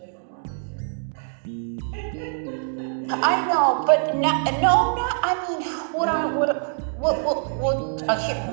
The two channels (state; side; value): silent; left; digital silence